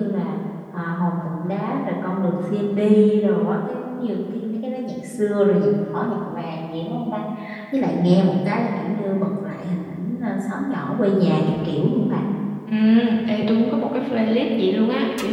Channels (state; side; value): identical; both; correlation 1.00